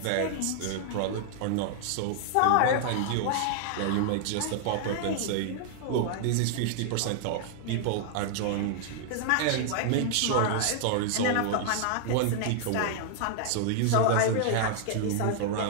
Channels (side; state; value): both; different; correlation -0.01